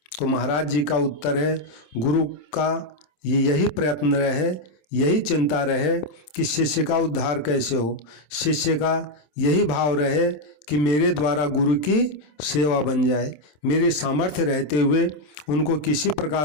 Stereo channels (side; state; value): right; late; 27 ms